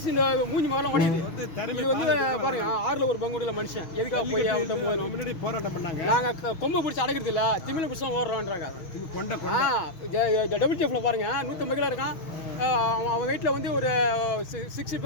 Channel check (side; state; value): right; late; 6.4 ms